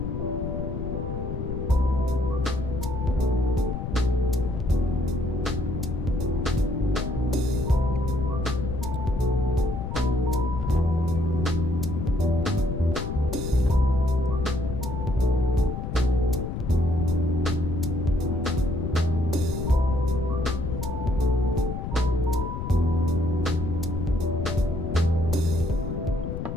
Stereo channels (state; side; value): noise; left; rumble, 4 dB below the sound